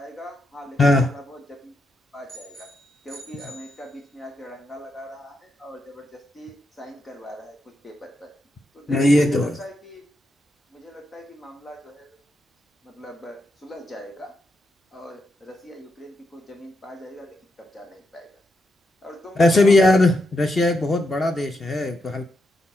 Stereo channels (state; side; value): normal; both; correlation 0.83